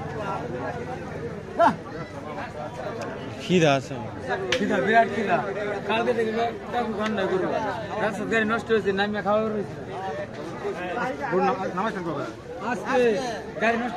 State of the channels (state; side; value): identical; both; correlation 1.00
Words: খিদা আছে খিদা বিরাট খিদা কালকে থেকে ঘন্টা করবো রাস্তা গাড়ি নষ্ট হয়েছে নামিয়ে খাওয়া রয়েছে আজকে গাড়ি নষ্ট